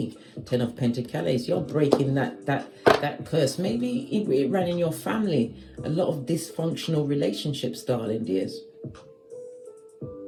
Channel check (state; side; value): identical; both; correlation 1.00